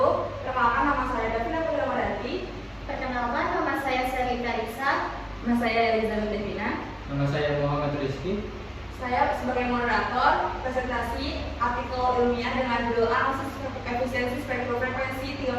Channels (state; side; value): identical; both; correlation 1.00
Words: Perkenalkan, nama saya Davina Putri. Perkenalkan, nama saya Selita Risa. Nama saya Elizabeth Devina. Nama saya Muhammad Rizky. Saya sebagai moderator presentasi artikel ilmiah dengan judul analisis efisiensi spektrum frekuensi